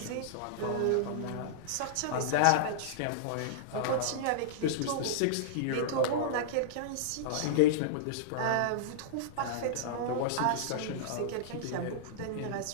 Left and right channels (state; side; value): different; both; correlation -0.02